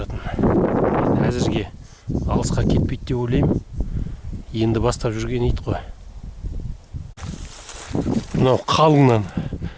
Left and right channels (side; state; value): both; identical; correlation 1.00